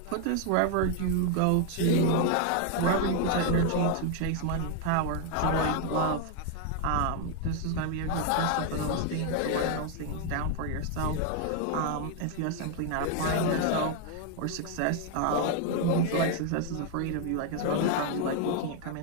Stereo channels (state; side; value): different; both; correlation 0.01